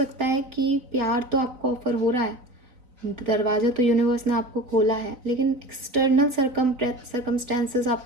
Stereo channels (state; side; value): late; left; 4.0 ms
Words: है कि प्यार तो आपको ऑफर हो रहा है, दरवाज़ा तो यूनिवर्स ने आपको खोला है, लेकिन एक्सटर्नल सर्कमस्टेंसेस